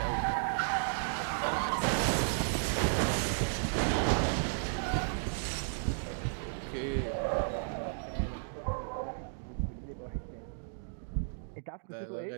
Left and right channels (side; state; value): left; silent; digital silence